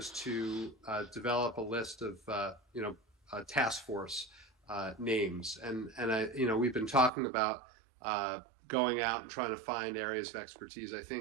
to develop a list of task force names, and we've been talking about going out and trying to find areas of expertise. I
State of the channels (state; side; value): drops out; left; at 7.1 s